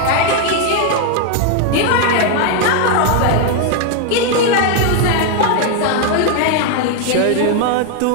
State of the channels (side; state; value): both; different; correlation 0.01